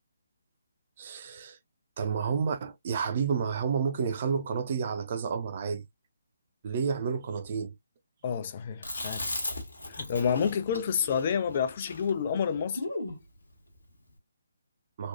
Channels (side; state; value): both; inverted; correlation -0.64